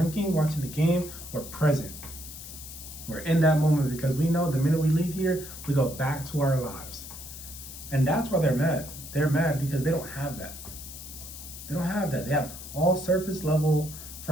watching the game, we're present. We're in that moment because we know the minute we leave here, we go back to our lives. And that's why they're mad. They're mad because they don't have that. They don't have that. They have all surface level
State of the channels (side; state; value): left; noise; hiss, 12 dB below the sound